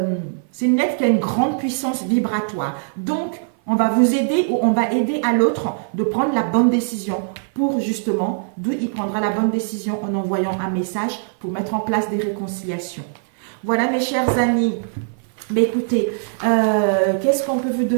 lettre qui a une grande puissance vibratoire. Donc, on va vous aider ou on va aider à l'autre de prendre la bonne décision pour justement, d'où il prendra la bonne décision en envoyant un message pour mettre en place des réconciliations. Voilà mes chers amis. Mais écoutez, qu'est-ce qu'on peut vous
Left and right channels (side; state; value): left; silent; 56 dB below the other